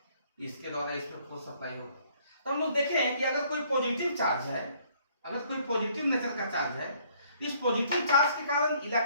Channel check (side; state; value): both; inverted; correlation -0.62